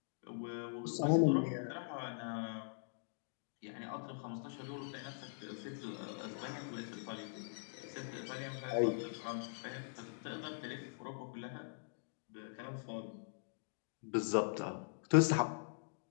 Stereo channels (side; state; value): right; silent; digital silence